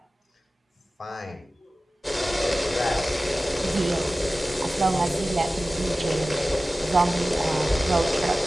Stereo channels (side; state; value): both; normal; correlation 0.96